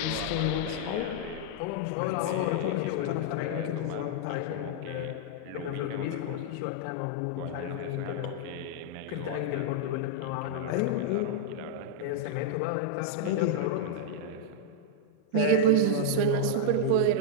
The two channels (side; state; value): both; different; correlation -0.02